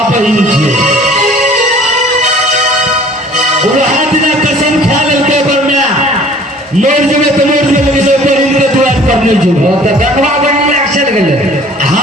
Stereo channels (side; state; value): both; normal; correlation 0.51